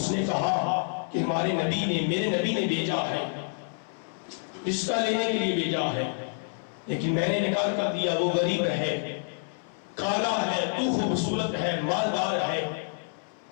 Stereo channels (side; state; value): right; silent; 59 dB below the other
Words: نے کہا کہ ہمارے نبی نے، میرے نبی نے بھیجا ہے، رشتہ لینے کے لیے بھیجا ہے، لیکن میں نے انکار کر دیا، وہ غریب ہے، کالا ہے، تو خوبصورت ہے، مالدار ہے.